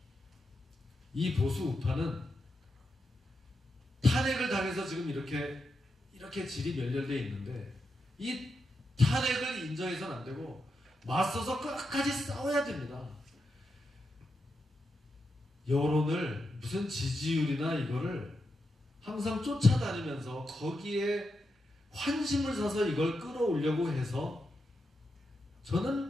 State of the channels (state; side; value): normal; both; correlation 0.86